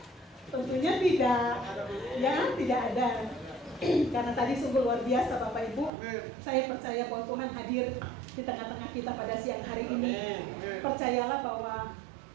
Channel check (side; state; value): left; drops out; at 5.9 s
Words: Tentunya tidak. Ya, tidak ada. Karena tadi sungguh luar biasa Bapak Ibu. Saya percaya bahwa Tuhan hadir di tengah-tengah kita pada siang hari ini. Percayalah bahwa